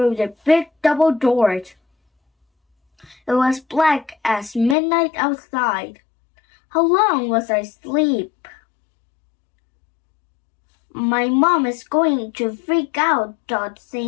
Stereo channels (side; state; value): right; drops out; at 4.8 s